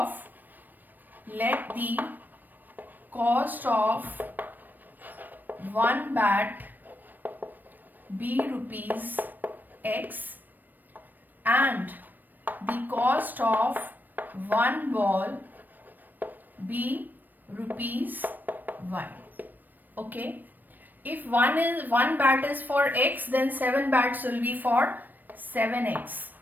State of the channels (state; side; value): late; left; 0.090 ms